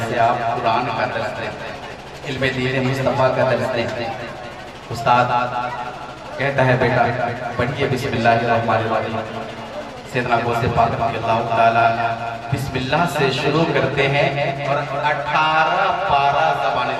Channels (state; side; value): identical; both; correlation 1.00